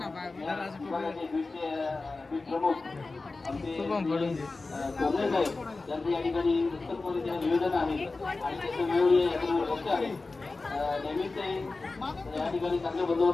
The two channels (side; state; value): right; quieter; 3.6 dB